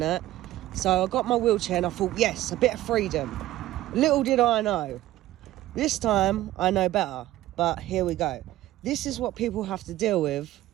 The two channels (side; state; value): left; quieter; 15.4 dB